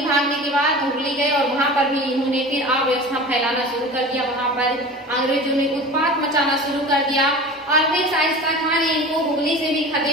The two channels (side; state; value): both; normal; correlation 0.35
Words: भागने के बाद हुगली गए और वहां पर भी इन्होंने फिर अव्यवस्था फैलाना शुरू कर दिया। वहां पर अंग्रेजों ने उत्पात मचाना शुरू कर दिया और फिर शाइस्ता खां ने इनको हुगली से भी